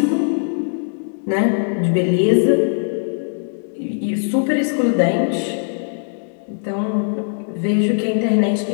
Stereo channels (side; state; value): right; silent; digital silence